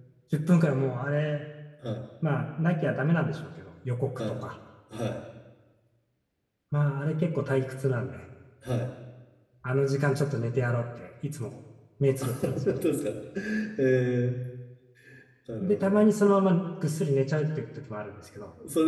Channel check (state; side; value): identical; both; correlation 1.00